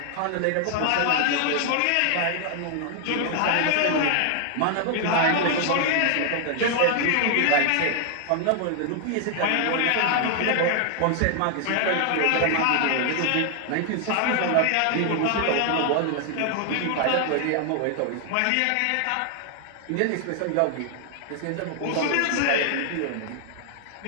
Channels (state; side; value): different; both; correlation 0.00